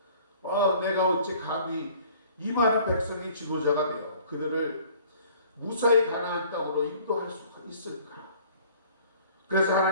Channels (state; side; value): inverted; both; correlation -0.53